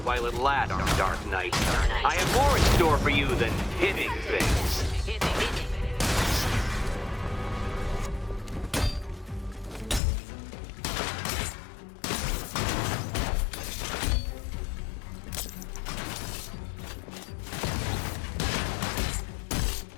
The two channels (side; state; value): right; drops out; at 10.0 s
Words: while it lasts, Dark Knight. I have more in store for you than hitting things.